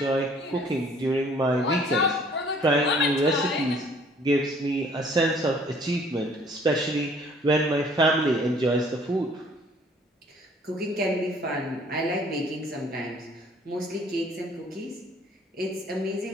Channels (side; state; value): both; normal; correlation 0.57